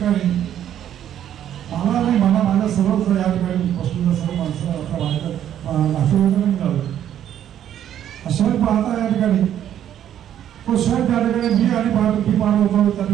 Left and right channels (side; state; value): left; quieter; 10.6 dB